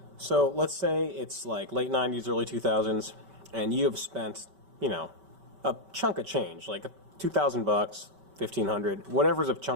So let's say it's like late 90s, early 2000s, and you have spent, a chunk of change, like $2,000, $1,500, whatever's a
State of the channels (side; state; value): left; late; 5.2 ms